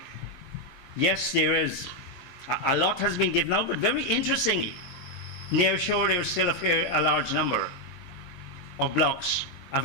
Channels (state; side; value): late; right; 22 ms